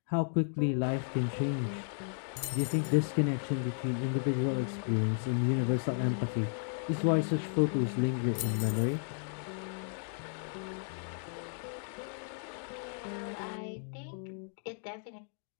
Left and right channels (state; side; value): silent; right; digital silence